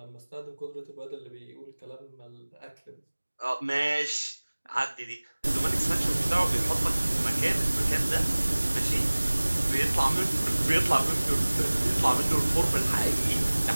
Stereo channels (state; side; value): inverted; both; correlation -1.00